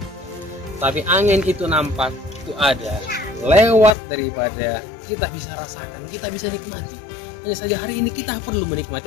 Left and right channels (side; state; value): right; drops out; at 4.0 s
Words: Tapi angin itu nampak, itu ada, lewat daripada kita bisa rasakan, kita bisa nikmati. Hanya saja hari ini kita perlu